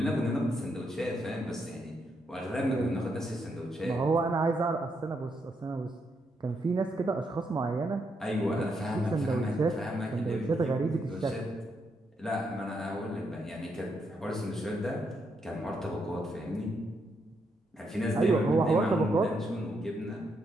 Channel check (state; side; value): normal; both; correlation 0.79